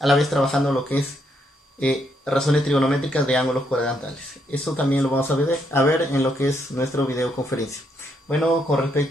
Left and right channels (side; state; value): both; normal; correlation 0.75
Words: la vez trabajando lo que es razones trigonométricas de ángulos cuadrantales. Eso también lo vamos a ver en lo que es nuestro videoconferencia. Bueno, con